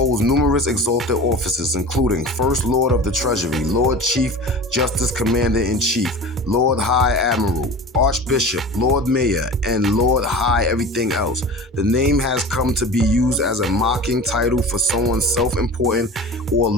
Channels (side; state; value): both; normal; correlation 0.36